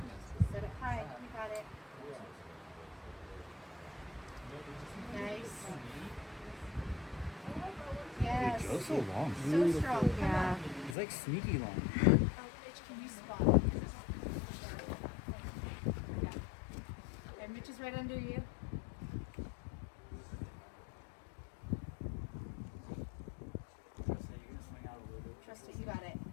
Set it high. You got it. Nice. Yes. It goes so long. So strong. Yeah. It's like sneaky long. Oh, Mitch, can you spot? Yeah. Okay, Mitch is right under you. Trust it. You got it.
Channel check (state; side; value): drops out; right; at 11.0 s